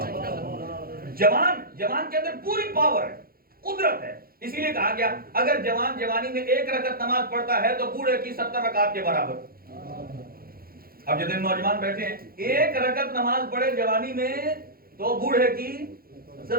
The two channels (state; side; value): late; left; 0.43 ms